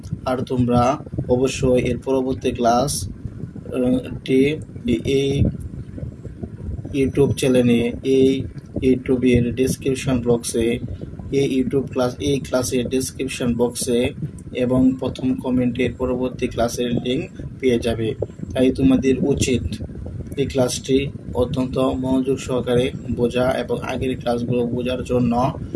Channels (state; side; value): identical; both; correlation 1.00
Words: আর তোমরা অবশ্যই এর পরবর্তী ক্লাসটি এই ইউটিউব চ্যানেলে, এই ইউটিউবের ডেসক্রিপশন বক্সে, এই ক্লাসের ডেসক্রিপশন বক্সে এবং প্রথম কমেন্টের পরবর্তী ক্লাসের লিঙ্ক পেয়ে যাবে। তাই তোমাদের উচিত এই ক্লাসটি অত্যন্ত মনোযোগ সহকারে বোঝা এবং আগের ক্লাসগুলো বোঝার জন্য